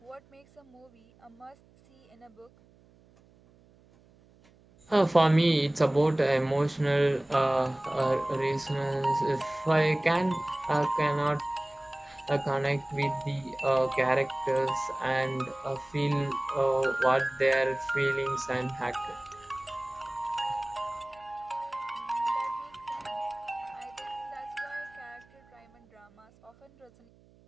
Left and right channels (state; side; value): noise; right; hum, 29 dB below the sound